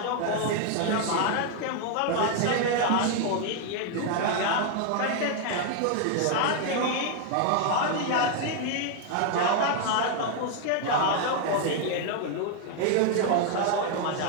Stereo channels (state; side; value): different; both; correlation 0.00